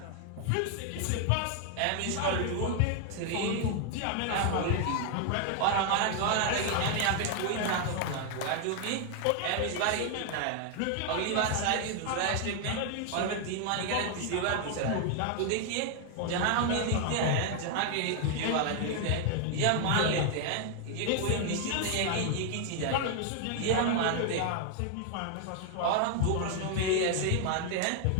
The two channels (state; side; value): different; both; correlation 0.00